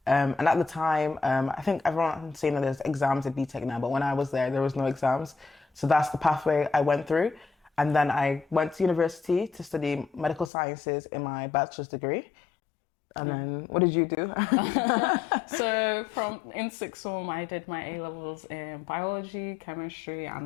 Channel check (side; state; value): right; drops out; at 10.5 s